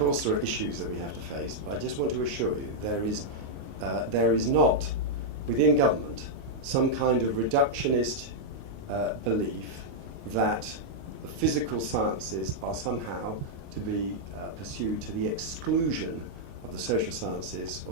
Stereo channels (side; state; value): left; late; 29 ms